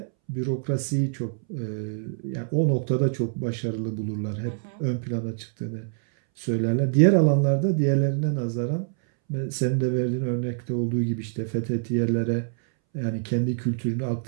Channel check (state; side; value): silent; left; 61 dB below the other